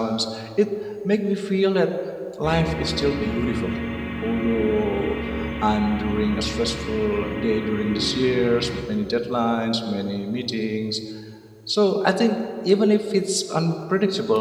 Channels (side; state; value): both; identical; correlation 1.00